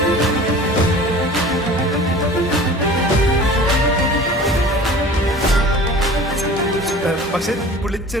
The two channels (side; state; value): both; normal; correlation 0.42